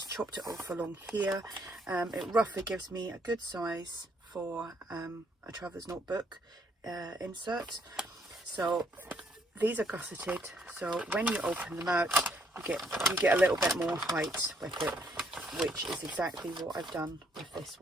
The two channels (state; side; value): normal; both; correlation 0.69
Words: chopped it off along here. It roughly gives me a good size for a traveller's notebook insert. So these are gusseted, so when you open them out you get a little bit more height with it, which is exactly what I've done with this